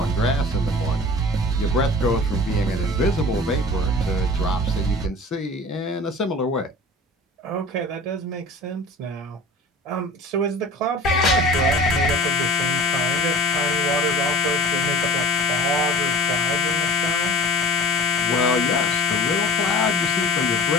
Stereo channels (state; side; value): normal; both; correlation 0.42